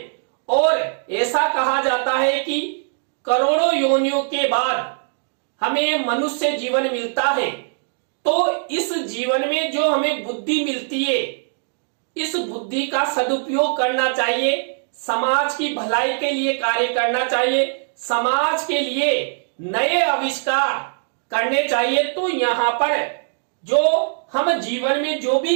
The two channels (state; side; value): silent; left; digital silence